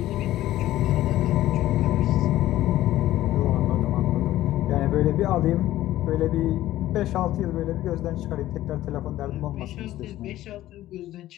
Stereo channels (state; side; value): quieter; right; 14.6 dB